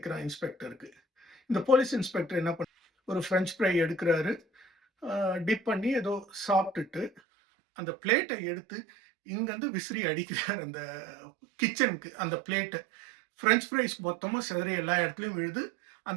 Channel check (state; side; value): drops out; left; at 7.2 s